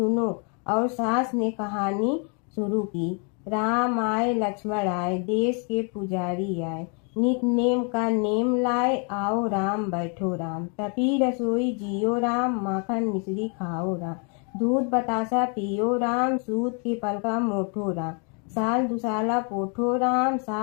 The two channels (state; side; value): quieter; right; 37.9 dB